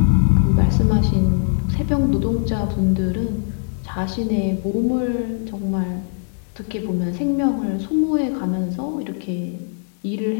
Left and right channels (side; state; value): right; silent; digital silence